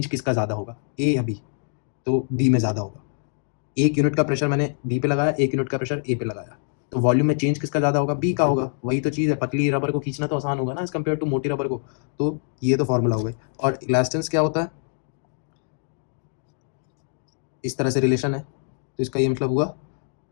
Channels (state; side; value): silent; right; 59 dB below the other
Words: किसका ज़्यादा होगा, ए या बी? तो बी में ज़्यादा होगा। एक यूनिट का प्रेशर मैंने बी पे लगाया, एक यूनिट का प्रेशर ए पे लगाया, तो वॉल्यूम में चेंज किसका ज़्यादा होगा? बी का होगा। वही तो चीज़ है, पतली रबर को खींचना तो आसान होगा ना एज कम्पेयर टू मोटी रबर को। तो ये तो फॉर्मूला हो गई। और इलास्टेंस क्या होता है? इस तरह से रिलेशन है, तो इसका ये मतलब हुआ